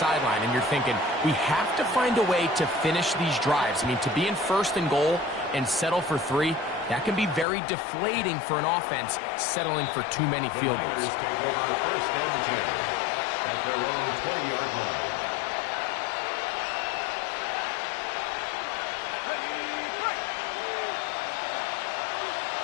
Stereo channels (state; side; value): drops out; right; at 7.5 s